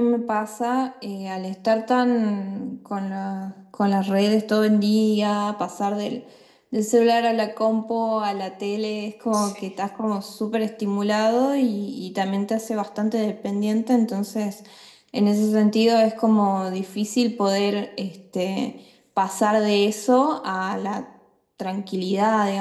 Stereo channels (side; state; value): both; identical; correlation 1.00